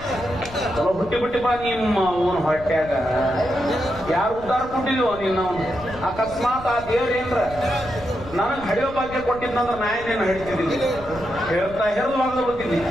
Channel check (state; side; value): noise; left; rumble, 15 dB below the sound